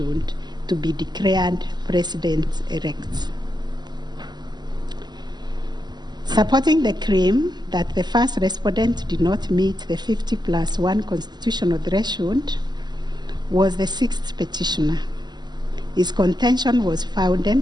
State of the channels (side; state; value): left; late; 0.21 ms